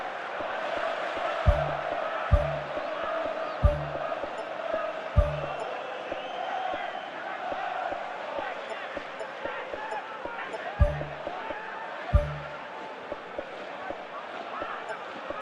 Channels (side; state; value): both; identical; correlation 1.00